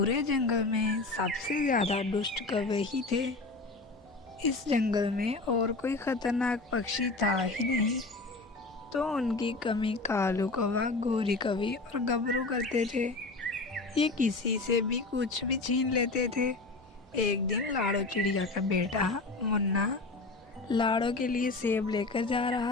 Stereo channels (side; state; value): right; quieter; 3.4 dB